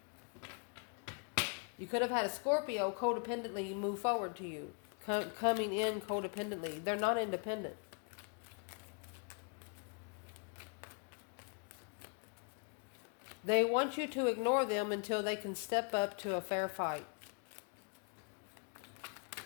You could have had a Scorpio codependently move forward to you. Coming in codependently. They're not independent. They want you to ignore them until they can step up to a fair fight.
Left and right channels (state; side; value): quieter; right; 38.9 dB